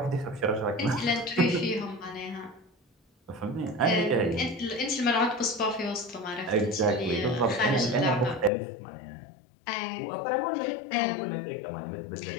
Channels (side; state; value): right; drops out; at 8.5 s